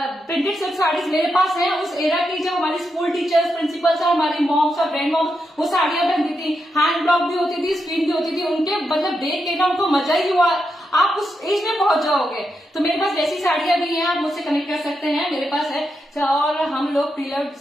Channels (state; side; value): normal; both; correlation 0.85